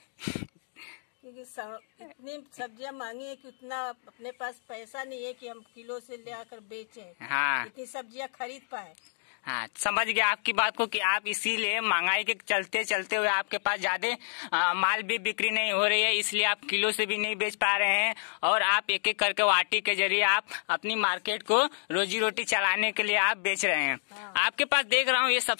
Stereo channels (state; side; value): silent; right; digital silence